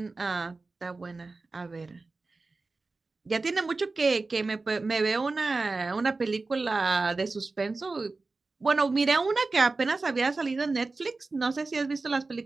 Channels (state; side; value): quieter; left; 3.7 dB